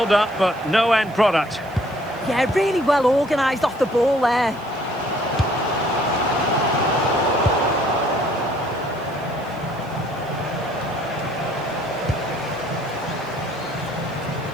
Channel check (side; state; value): right; noise; hiss, 27 dB below the sound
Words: but no end product. Yeah, really well organised off the ball there.